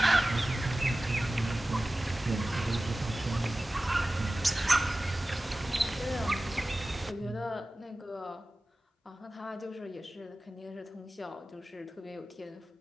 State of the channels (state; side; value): normal; both; correlation 0.96